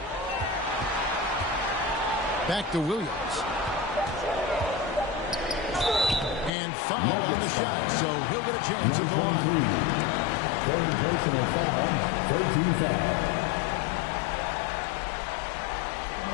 Back to Williams. And foul on the shot, so he'll get a chance at the line. Third personal foul, 13 foul.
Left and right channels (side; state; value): right; drops out; at 6.5 s